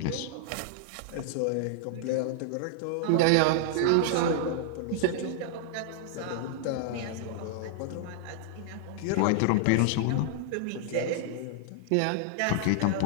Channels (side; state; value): both; different; correlation -0.01